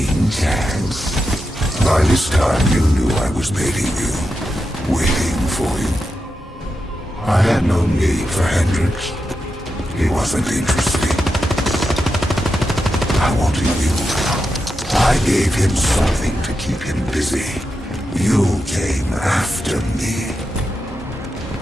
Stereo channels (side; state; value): both; normal; correlation 0.88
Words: chance. By this time, you knew I was baiting you, waiting for you. I had no need for Hendricks. He wasn't interesting. I wanted you. I gave him something to keep him busy. You came after me.